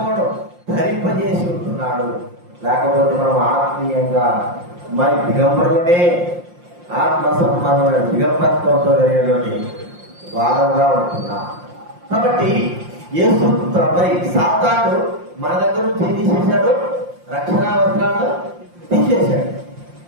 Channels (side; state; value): left; late; 5.7 ms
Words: ధరింపజేసి ఉంటున్నాడు. లేకపోతే మనం ఆత్మీయంగా మరి దిగంబరులనే ఆత్మ సంబంధమైన దిగంబరత్వంతో జరిగినటువంటి వారంగా ఉంటున్నాం. కాబట్టి యేసు మరి సాతాను మన దగ్గర నుంచి తీసేశాడు, రక్షణా వస్త్రాలను తీసేశాడు.